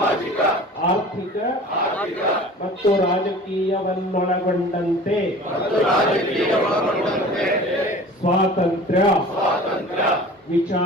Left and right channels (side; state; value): both; normal; correlation 0.42